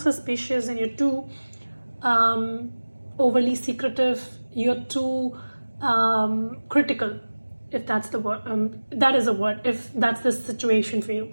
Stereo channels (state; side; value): inverted; both; correlation -1.00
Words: and you're too overly secretive. You're too critical, if that's the word. That is a word, if that's the situation for you.